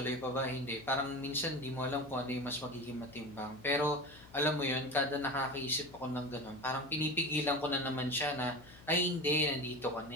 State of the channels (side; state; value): left; noise; hum, 21 dB below the sound